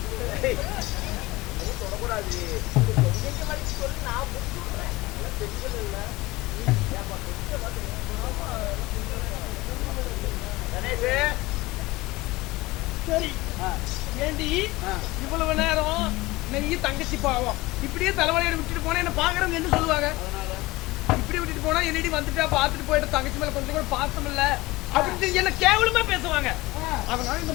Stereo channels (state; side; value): quieter; right; 20.5 dB